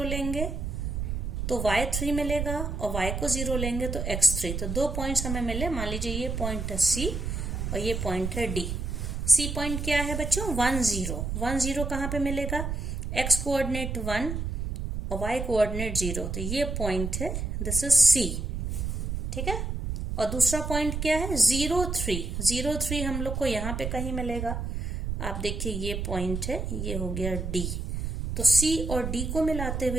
लेंगे तो y 3 मिलेगा, और y को 0 लेंगे तो x 3। तो 2 पॉइंट्स हमें मिले। मान लीजिए ये पॉइंट है C और ये पॉइंट है D। C पॉइंट क्या है बच्चों, 1, 0। 1, 0 कहाँ पे मिलेगा, x कोऑर्डिनेट 1 और y कोऑर्डिनेट 0, तो ये पॉइंट है, दिस इज C। ठीक है, और दूसरा पॉइंट क्या है, 0, 3। 0, 3 हम लोग को यहाँ पे कहीं मिलेगा। आप देखिए ये पॉइंट है, ये हो गया D। तो C और D को मिलाते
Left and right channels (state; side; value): noise; right; rumble, 3 dB below the sound